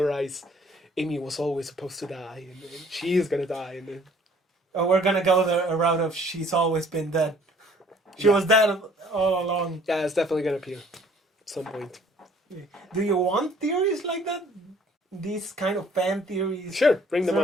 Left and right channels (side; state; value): both; normal; correlation 0.57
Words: Amy was always supposed to die and she's gonna die and then... We're gonna go the route of she's always been dead. She was dead all along. Yeah, it's definitely gonna appear at some point. Do you want theories like that? These kind of fan theories? Sure, bring them